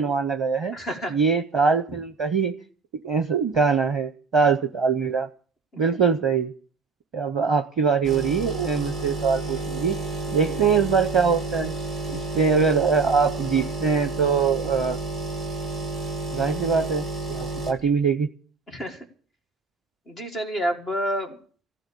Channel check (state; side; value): quieter; left; 4.7 dB